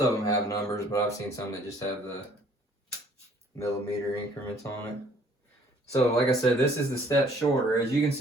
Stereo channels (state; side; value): normal; both; correlation 0.59